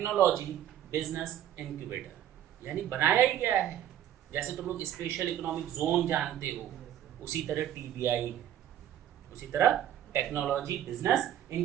बिजनेस इंक्यूबेटर। यानी बनाया ही गया है। जैसे तुम लोग स्पेशल इकोनॉमिक जोन जानते हो, उसी तरह टीबीआई है, उसी तरह टेक्नोलॉजी बिजनेस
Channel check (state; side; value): quieter; left; 11.3 dB